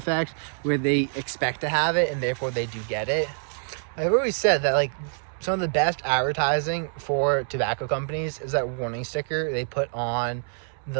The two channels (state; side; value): silent; left; 61 dB below the other